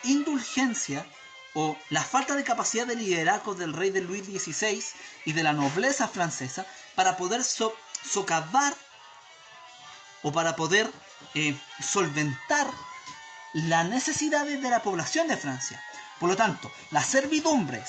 indulgencia o la falta de capacidad de liderazgo del rey de Luis XVI y de la nobleza francesa para poder socavar o para poder solventar las necesidades de la población de Francia. Por lo tanto, la servidumbre,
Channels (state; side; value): identical; both; correlation 1.00